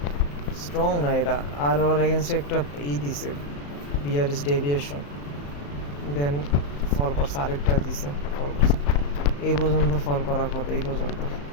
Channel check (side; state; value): right; late; 35 ms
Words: স্ট্রং না এটা, আর ওর এগেনস্টে একটা দিছে বিয়ারিশ ডেভিয়েশন, দেন ফল করছে, আরেকটা দিছে ফল করছে, এই পর্যন্ত ফল করার কথা, এই পর্যন্ত,